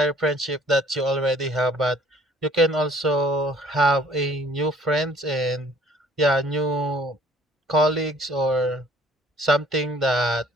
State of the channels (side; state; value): both; normal; correlation 0.56